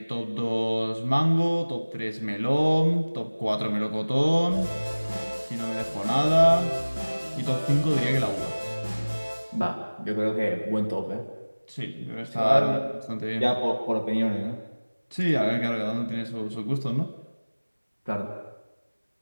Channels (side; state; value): both; inverted; correlation -1.00